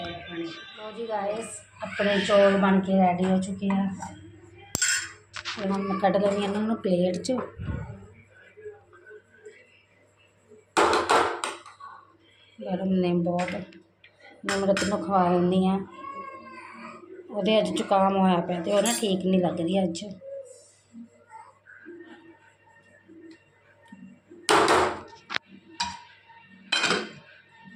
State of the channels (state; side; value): identical; both; correlation 1.00